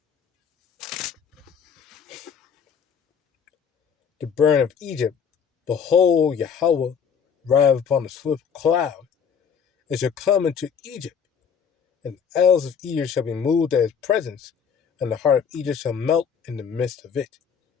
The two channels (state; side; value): quieter; right; 7.1 dB